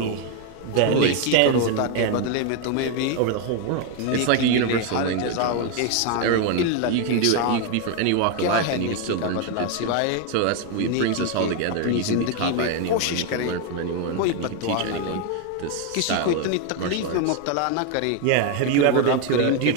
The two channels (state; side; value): different; both; correlation 0.01